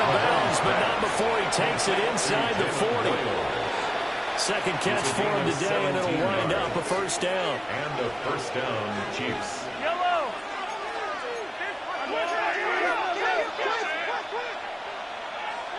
of bounds, but not before he takes it inside the 40. Second catch for him today, and it'll wind up a 1st down. And a 1st down, Chiefs.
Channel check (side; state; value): both; identical; correlation 1.00